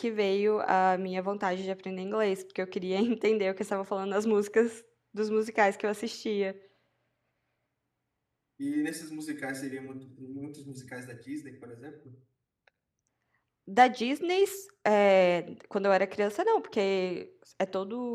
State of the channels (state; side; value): identical; both; correlation 1.00